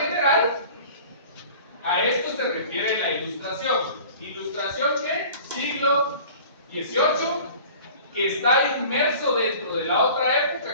a esto se refiere la ilustración. ¿Ilustración qué? Siglo XVIII, que está inmerso dentro de la otra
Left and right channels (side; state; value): both; inverted; correlation -0.44